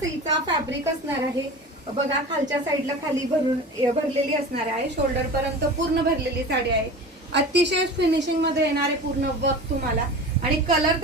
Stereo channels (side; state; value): both; normal; correlation 0.34